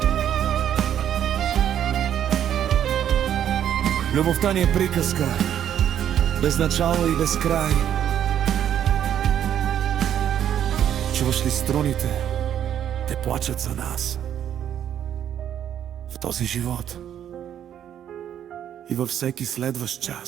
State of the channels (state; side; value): quieter; left; 10.0 dB